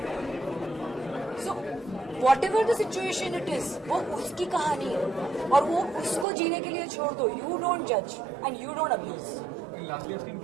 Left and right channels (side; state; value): left; drops out; at 6.2 s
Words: So what ever the situation it is, वो उसकी कहानी है और वो उसको जीने के लिए छोड़ दो. यू डोंट जज and you don't abuse. Lastly आप टीम